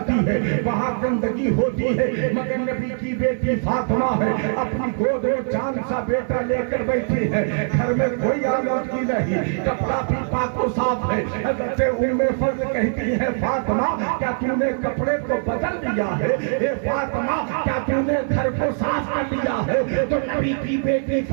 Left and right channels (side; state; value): left; silent; 64 dB below the other